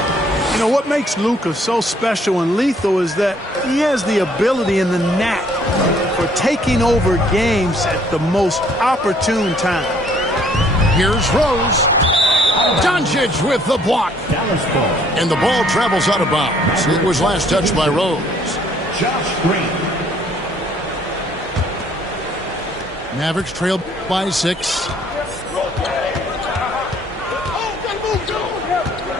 You know, what makes Luka so special and lethal is that he has the ability and the knack for taking over games at the most opportune time. Here's Rose. Doncic with the block. And the ball travels out of bounds. It was last touched by Rose. Josh Green. Mavericks trailed by 6.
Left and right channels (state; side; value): normal; both; correlation 0.62